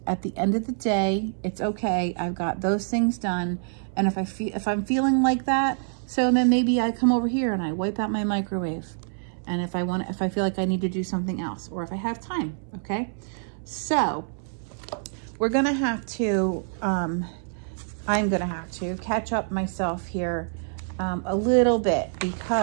at the end of the day, it's okay. I've got those things done. And if I'm feeling like that, so then maybe I come over here and I wipe out my microwave. And if I feel like I need to do something else, or if I have time, okay? So we're gonna have to, I'm gonna have to catch up myself here a little bit,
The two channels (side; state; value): left; silent; 61 dB below the other